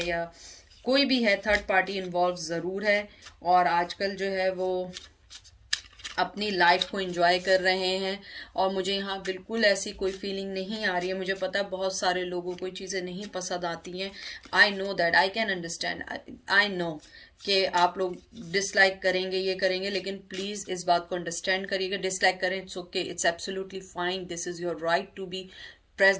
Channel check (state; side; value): identical; both; correlation 1.00